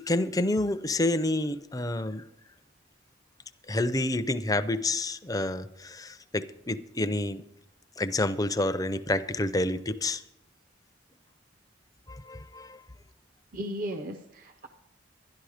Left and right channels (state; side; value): normal; both; correlation 0.62